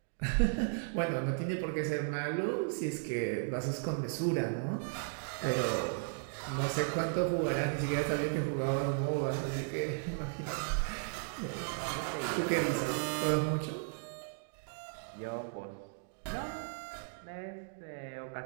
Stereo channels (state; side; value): silent; left; digital silence